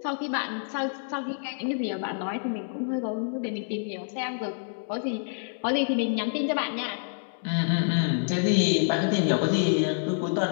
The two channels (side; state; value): right; silent; digital silence